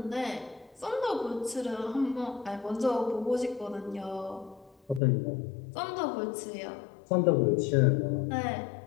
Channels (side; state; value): right; drops out; at 5.0 s